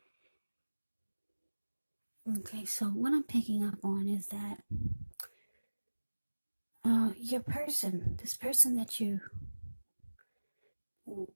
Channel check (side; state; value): both; inverted; correlation -1.00